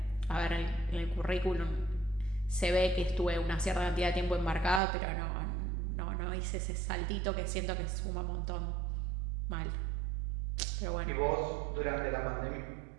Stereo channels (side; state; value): left; drops out; at 4.8 s